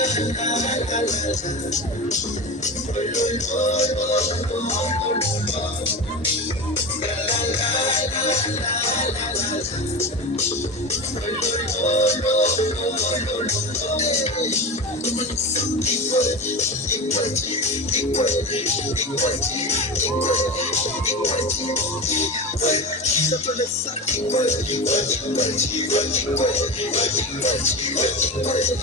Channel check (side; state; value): both; normal; correlation 0.24